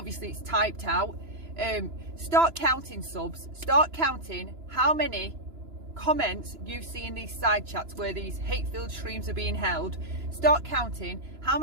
it's typed out. Start counting, subs. Start counting how many comments you see in these side chats where these hate-filled streams are being held. Start counting how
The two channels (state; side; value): late; left; 2.9 ms